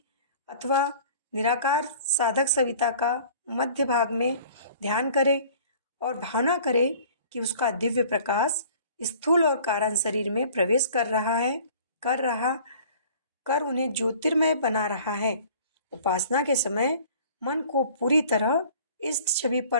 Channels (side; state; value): both; inverted; correlation -0.50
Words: अथवा निराकार साधक सविता का मध्य भाग में ध्यान करें और भावना करें कि उसका दिव्य प्रकाश स्थूल और कारण शरीर में प्रवेश कर उन्हें ज्योतिर्मय बना रहा है। उपासना के समय मन को पूरी तरह इस छवि